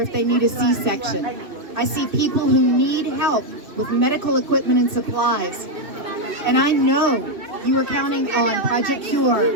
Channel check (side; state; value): left; late; 2.6 ms